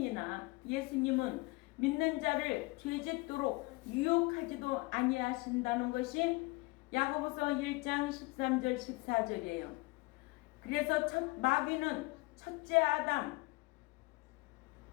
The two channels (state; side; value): quieter; right; 24.8 dB